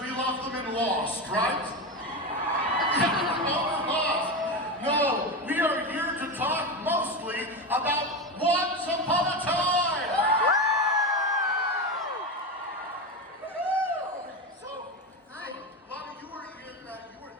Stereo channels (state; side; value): normal; both; correlation 0.18